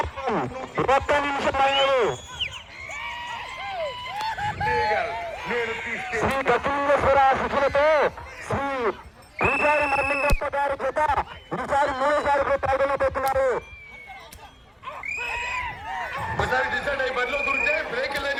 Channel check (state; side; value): identical; both; correlation 1.00